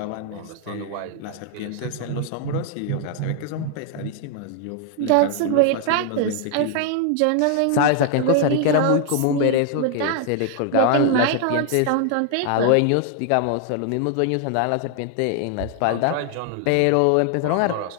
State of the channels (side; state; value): both; different; correlation 0.00